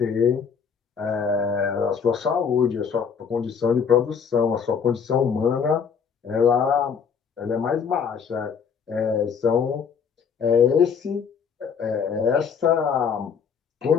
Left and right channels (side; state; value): right; quieter; 6.6 dB